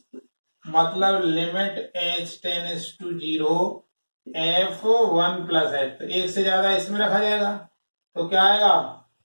मतलब limit h tends to 0 f1 plus h, तो एक से ज्यादा इसमें रखा जाएगा, तो क्या आएगा,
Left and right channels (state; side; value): inverted; both; correlation -1.00